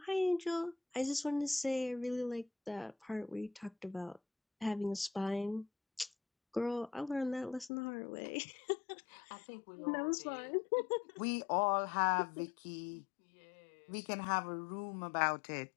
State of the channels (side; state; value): right; drops out; at 7.7 s